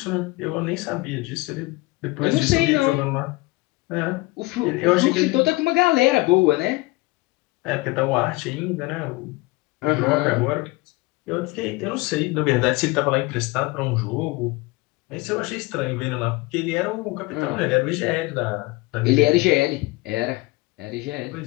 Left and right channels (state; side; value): quieter; right; 22.2 dB